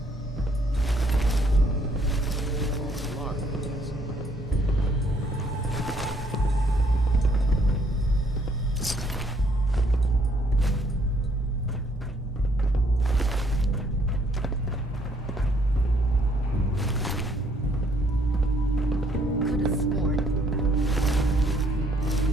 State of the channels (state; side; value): normal; both; correlation 0.66